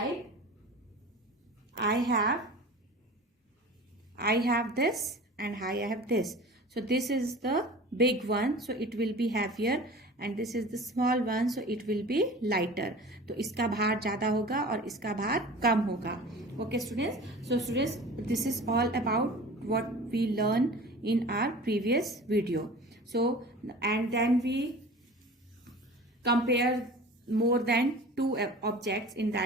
I have this and I have this. So this is the big one, so it will be heavier, and this is the small one, so it will be lighter. तो इसका भार ज्यादा होगा और इसका भार कम होगा. Okay students, so students, this is all about what we learn in our previous video. So and then we compare more than 2 objects in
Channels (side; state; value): both; normal; correlation 0.39